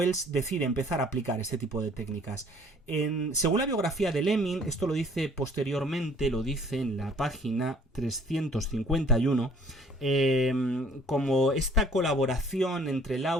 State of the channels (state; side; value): normal; both; correlation 0.55